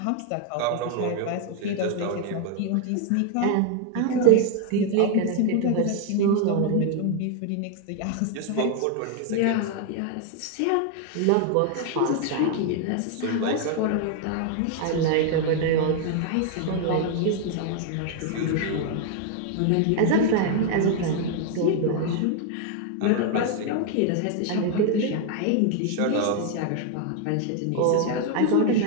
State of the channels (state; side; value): different; both; correlation 0.00